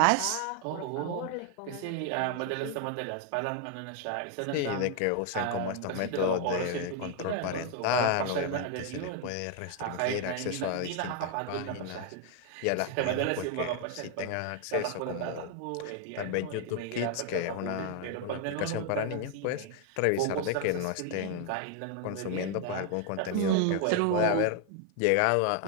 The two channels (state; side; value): different; both; correlation 0.00